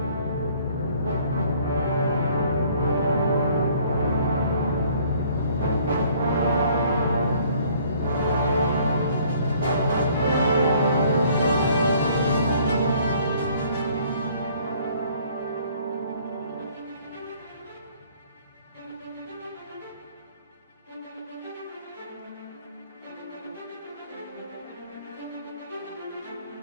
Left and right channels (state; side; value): inverted; both; correlation -0.59